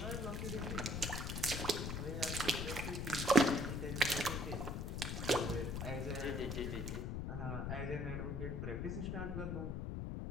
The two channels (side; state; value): left; noise; rumble, 2 dB below the sound